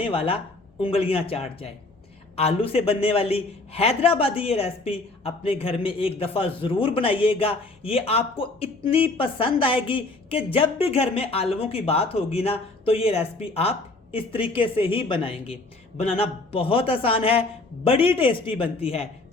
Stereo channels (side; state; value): right; quieter; 3.1 dB